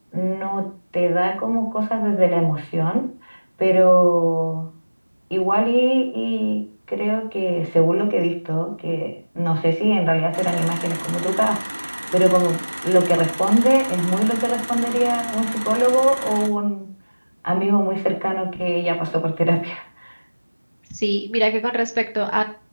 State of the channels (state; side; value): inverted; both; correlation -1.00